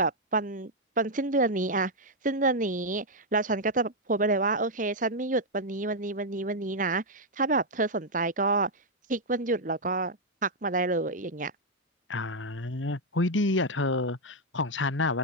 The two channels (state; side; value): normal; both; correlation -0.02